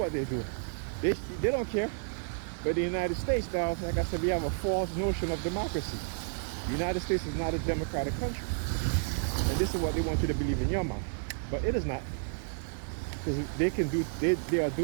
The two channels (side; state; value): left; silent; digital silence